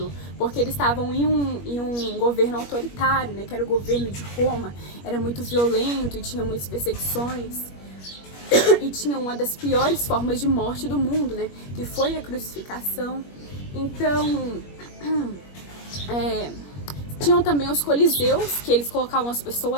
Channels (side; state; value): right; late; 21 ms